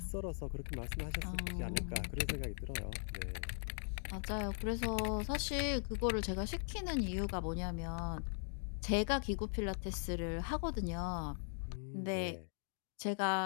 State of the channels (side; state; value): right; silent; 51 dB below the other